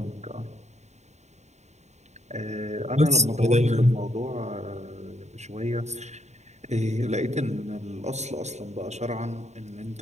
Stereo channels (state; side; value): late; left; 0.33 ms